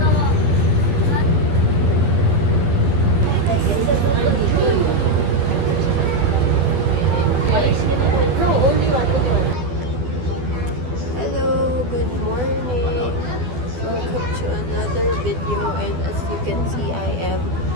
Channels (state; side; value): late; left; 12 ms